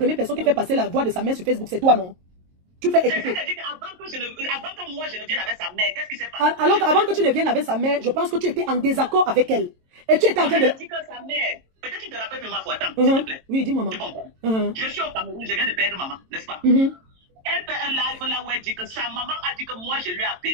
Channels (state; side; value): late; left; 22 ms